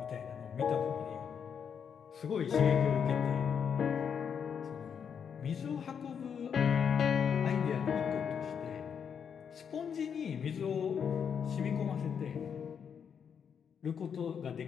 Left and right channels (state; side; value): quieter; right; 7.3 dB